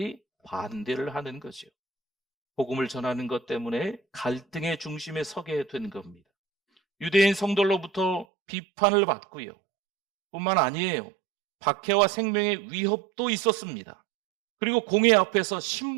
반대를 하는 거죠. 복음을 전하는 것 때문에 갈등의 중심에 서게 된 겁니다. 유대인 성도로부터 비판을 받고요. 뿐만 아니에요. 박해와 생명의 위협도 있었습니다. 그리고 공회 앞에서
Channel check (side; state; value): left; drops out; at 8.2 s